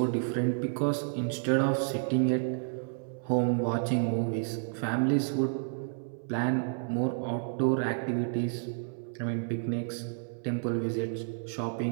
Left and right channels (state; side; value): silent; left; 57 dB below the other